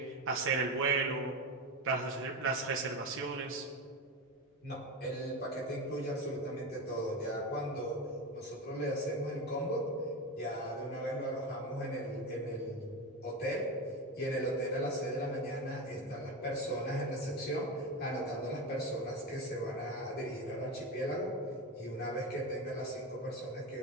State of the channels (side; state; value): both; normal; correlation 0.19